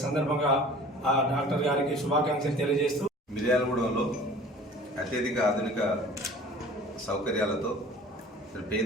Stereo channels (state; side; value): normal; both; correlation 0.46